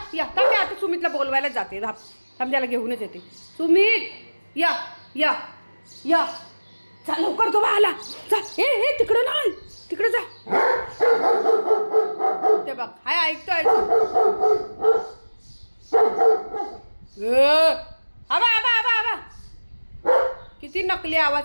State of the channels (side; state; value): both; inverted; correlation -1.00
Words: या. थांब आता सुमितला बोलवायलाच जाते. थांब त्याला घेऊनच येते. सुमित या या या. जा लवकर तो आला. जा. ए तिकडं नाही, तिकडे जा. ते बघ हाय ऐकतोय. आबा आबा आबा आबा. किती नकली